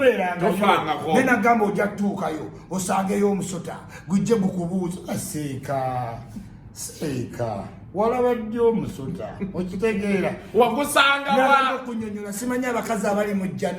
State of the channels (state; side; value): identical; both; correlation 1.00